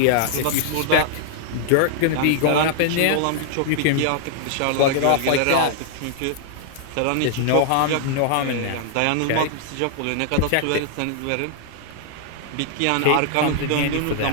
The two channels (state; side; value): different; both; correlation -0.01